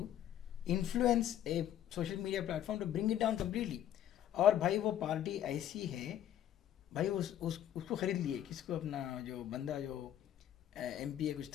influence a social media platform to bring it down completely. और भाई वो party ऐसी है भाई, उसको खरीद लिए. किसको? अपना जो बंदा जो MP कुछ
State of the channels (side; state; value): right; quieter; 11.1 dB